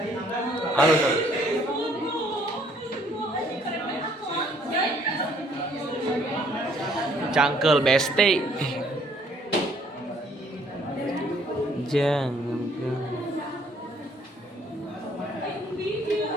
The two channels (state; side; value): normal; both; correlation 0.63